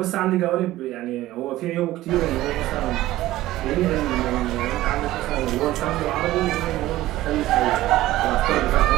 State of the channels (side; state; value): left; quieter; 15.9 dB